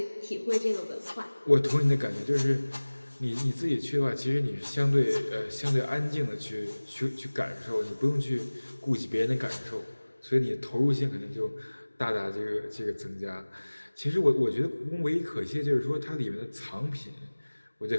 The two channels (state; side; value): inverted; both; correlation -1.00